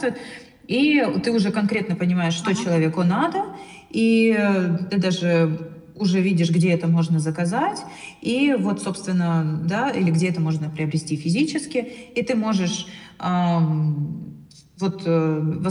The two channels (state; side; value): identical; both; correlation 1.00